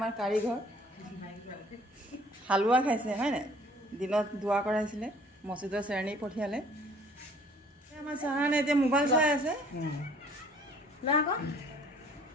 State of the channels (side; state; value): both; normal; correlation 0.55